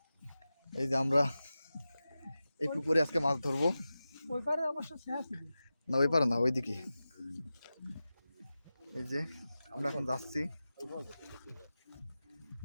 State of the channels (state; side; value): inverted; both; correlation -0.94